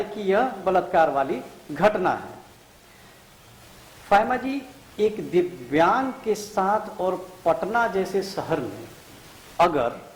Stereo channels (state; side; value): identical; both; correlation 1.00